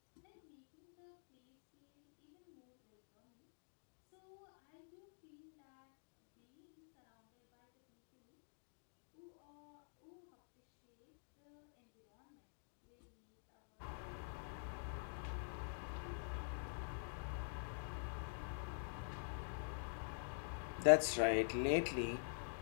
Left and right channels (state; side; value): silent; right; digital silence